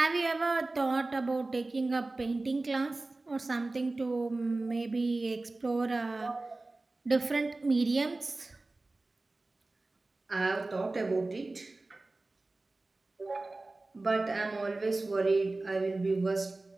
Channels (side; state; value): left; quieter; 3.1 dB